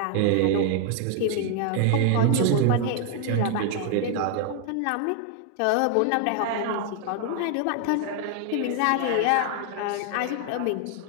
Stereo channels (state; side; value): different; both; correlation 0.00